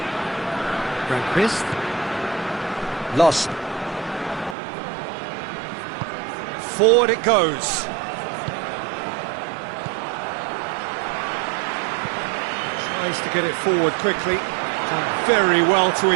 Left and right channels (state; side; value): drops out; left; at 4.5 s